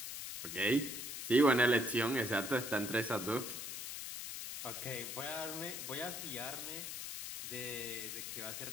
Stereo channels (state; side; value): noise; left; hiss, 6 dB below the sound